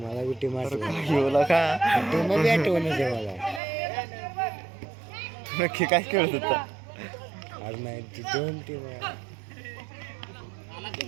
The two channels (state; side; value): drops out; left; at 3.6 s